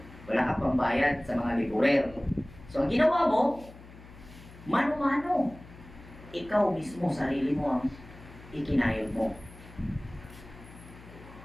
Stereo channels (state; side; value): noise; left; hum, 19 dB below the sound